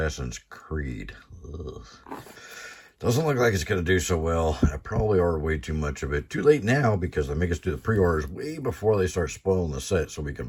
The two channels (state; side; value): identical; both; correlation 1.00